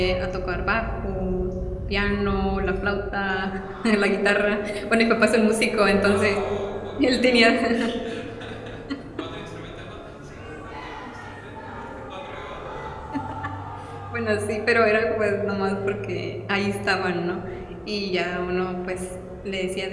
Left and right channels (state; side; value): identical; both; correlation 1.00